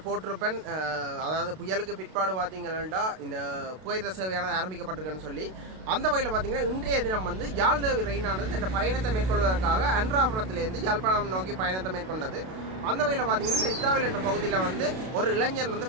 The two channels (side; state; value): left; late; 32 ms